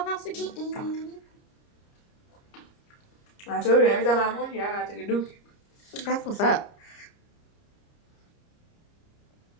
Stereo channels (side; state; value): right; late; 30 ms